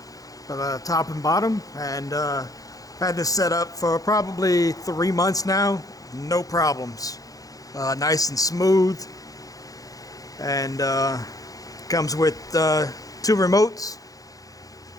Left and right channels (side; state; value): right; late; 0.17 ms